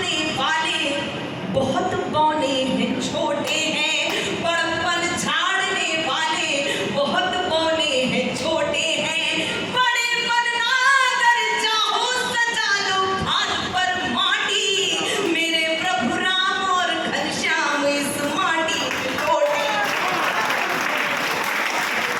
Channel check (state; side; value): identical; both; correlation 1.00